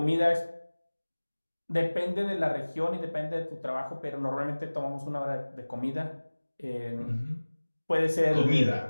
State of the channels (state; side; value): inverted; both; correlation -1.00